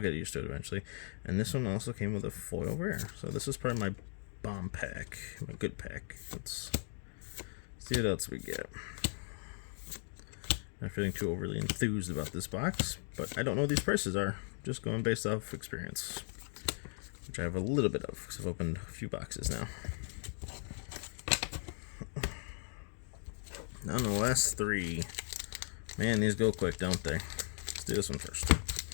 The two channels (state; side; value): silent; right; 53 dB below the other